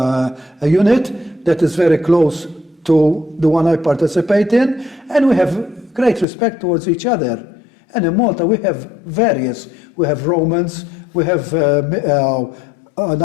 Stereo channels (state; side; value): drops out; right; at 6.2 s